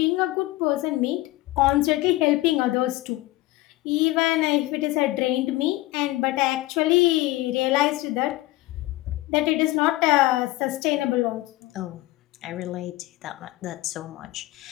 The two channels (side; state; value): right; quieter; 18.5 dB